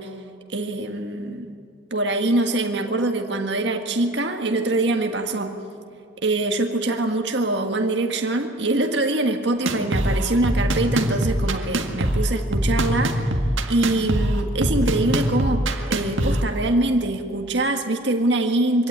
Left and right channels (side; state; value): both; normal; correlation 0.50